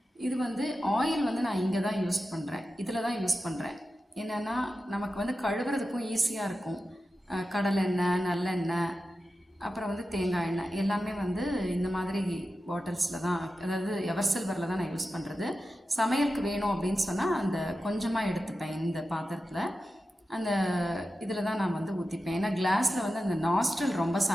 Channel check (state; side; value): normal; both; correlation 0.92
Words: இது வந்து ஆயில் வந்து நான் இங்கே தான் யூஸ் பண்ணுறேன். இதில் தான் யூஸ் பண்ணுறேன். என்னென்னா நமக்கு வந்து கழுவுறதுக்கும் ஈஸியாக இருக்கும். கடலெண்ணெய், நல்லெண்ணெய், அப்புறம் வந்து தேங்காய் எண்ணெய் எல்லாமே வந்து இந்த மாதிரி பாட்டில்ஸில் தான், அதாவது எவர் சில்வரில் தான் நான் யூஸ் பண்ணுறது. சமையலுக்கு வேணும் அப்படின்னு சொன்னால் அந்த கொஞ்சமாக எடுத்துப்பேன். இந்த பாத்திரத்தில் அந்த இதில் தான் நான் வந்து ஊற்றிப்பேன். ஏன்னா கிளாஸில் வந்து அந்த நாஸ்ட்ரல் ரொம்ப